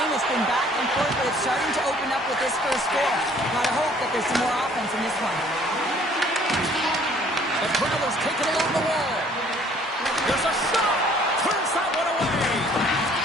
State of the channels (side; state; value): both; normal; correlation 0.58